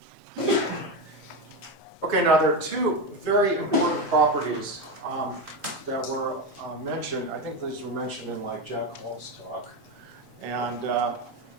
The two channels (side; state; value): both; normal; correlation 0.15